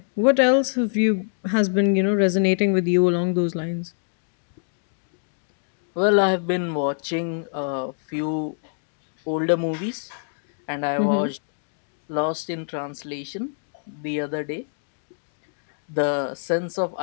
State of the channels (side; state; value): right; silent; digital silence